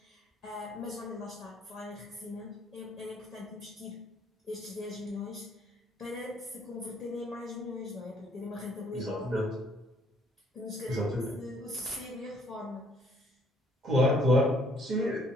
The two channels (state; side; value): normal; both; correlation 0.63